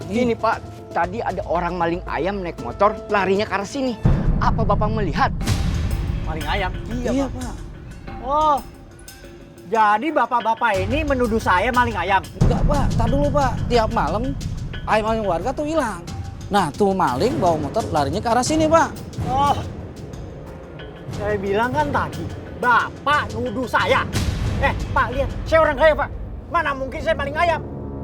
Gini Pak, tadi ada orang maling ayam naik motor larinya ke arah sini. Apa Bapak melihat? Maling ayam? Iya Pak. Oh, jadi bapak-bapak ini menuduh saya maling ayam? Enggak Pak, tar dulu Pak. Tiap malam ayam-ayam warga tuh hilang. Nah tuh maling bawa motor larinya ke arah sini Pak. Oh, saya bilang kan tadi, Bapak nuduh saya. Pak lihat, saya orang kaya Pak. Mana mungkin saya maling ayam?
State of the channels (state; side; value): identical; both; correlation 1.00